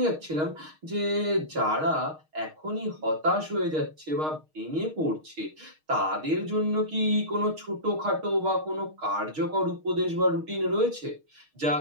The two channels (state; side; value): late; left; 6.5 ms